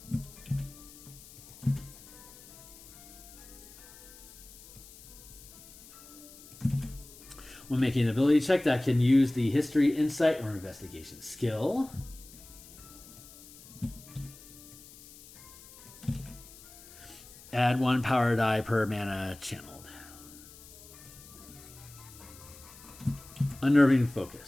when making an ability check that can use the history, insight, or investigation skill. Add 1 power die per mana channeled. Unnerving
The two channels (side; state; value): left; noise; hiss, 20 dB below the sound